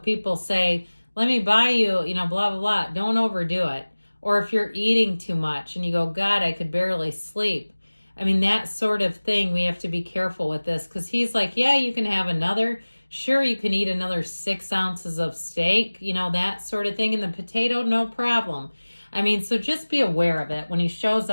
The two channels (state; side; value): inverted; both; correlation -1.00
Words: say, let me buy you, blah, blah, blah. Don't overdo it. Or if you're eating too much and you go, God, I could barely sleep. I mean, that sort of thing, we have to be careful with this because he's like, yeah, you can have another. Sure, you can eat another 6 ounces of steak, that sort of thing. And the potato, no problem. I mean, so just be aware of it. When he shows